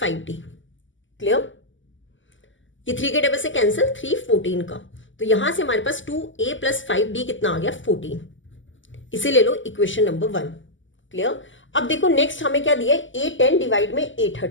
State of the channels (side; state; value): right; late; 0.55 ms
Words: क्लियर? ये 3 के टेबल से कैंसिल, 3 14 का, तो यहां से हमारे पास 2a + 5d कितना आ गया 14। इसे ले लो इक्वेशन नंबर 1। क्लियर? अब देखो नेक्स्ट हमें क्या दिया है, A10 डिवाइड में